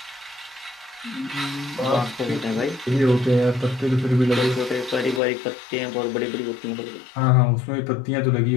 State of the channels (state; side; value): drops out; right; at 5.2 s